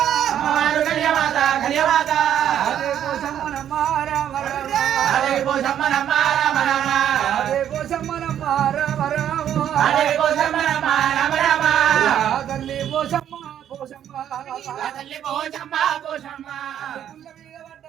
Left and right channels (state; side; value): quieter; left; 10.2 dB